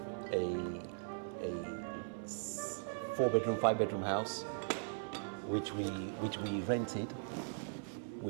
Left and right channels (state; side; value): silent; left; digital silence